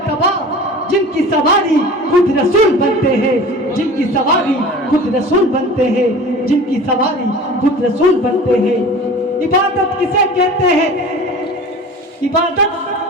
जिनकी सवारी खुद रसूल बनते हैं, जिनकी सवारी खुद रसूल बनते हैं, जिनकी सवारी खुद रसूल बनते हैं। इबादत किसे कहते हैं, इबादत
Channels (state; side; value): normal; both; correlation 0.39